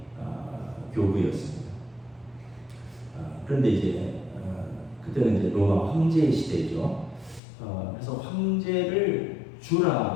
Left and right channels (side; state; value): right; drops out; at 7.4 s